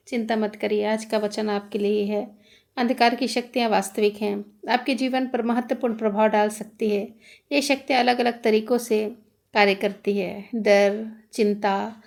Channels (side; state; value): both; identical; correlation 1.00